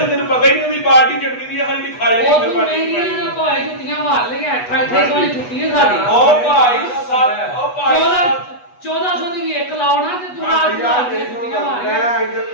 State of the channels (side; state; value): right; late; 8.2 ms